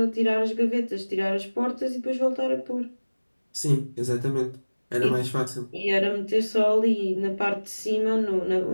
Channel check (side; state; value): both; inverted; correlation -1.00